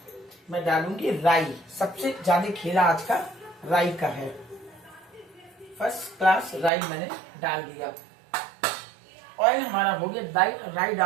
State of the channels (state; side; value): drops out; left; at 6.7 s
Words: मैं डालूंगी राई। सबसे ज्यादा खेला आज का राई का है। फर्स्ट क्लास राई मैंने डाल दिया। ऑयल हमारा हो गया। राई